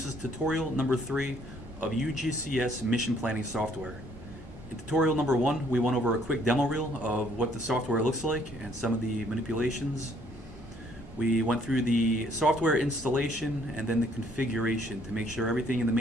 is tutorial number 3 of UgCS mission planning software. In tutorial number 1, we went over a quick demo reel of what the software looks like and some of the manipulations. We went through the software installation and then the configuration to make sure everything in the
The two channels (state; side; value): normal; both; correlation 0.64